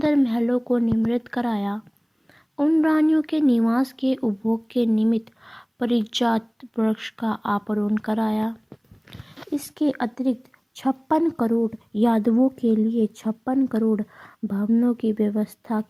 महलों को निर्मित कराया। उन रानियों के निवास के उपभोग के निमित्त परिजात वृक्ष का आरोपण कराया। इसके अतिरिक्त 56 करोड़ यादवों के लिए 56 करोड़ भवनों की व्यवस्था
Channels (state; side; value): identical; both; correlation 1.00